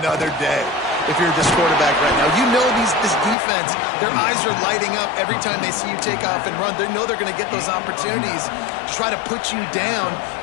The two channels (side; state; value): right; drops out; at 3.4 s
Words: day. If you're this quarterback right now, you know this defense, their eyes are lighting up every time they see you take off and run. They know they're going to get those opportunities to try to put you down.